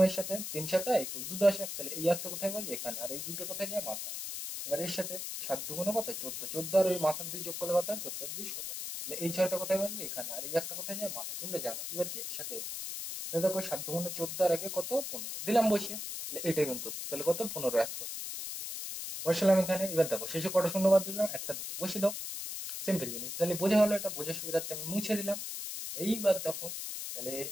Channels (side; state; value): left; noise; hiss, 5 dB below the sound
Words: এর সাথে 3 7 21 2 10 1, তাহলে এই একটা কোথায় বলবে এখানে, আর এই দুটো কোথায় যায় মাথায়। এবার এর সাথে 7 দুগুণে কত 14, 14 আর ওই মাথার 2 যোগ করলে কত হয় 14 আর 2 16, তাহলে এই 6টা কোথায় বলবে এখানে, আর এই একটা কোথায় যায় মাথায়, তোমরা জানো। এবার কি এর সাথে তাহলে দেখো 7 দুগুণে 14 আর আগে কত 15 দিলাম বসিয়ে, তাহলে এটাই কিন্তু তাহলে কত 15 61 বসালাম এখানে। এবার দেখো শেষে কটা শূন্য বাদ দিলাম, একটা দুটো বসিয়ে দাও, সিম্পল জিনিস। তাহলে বোঝা হলো, এটা বোঝার সুবিধার্থে আমি মুছে দিলাম। এইবার দেখো, তাহলে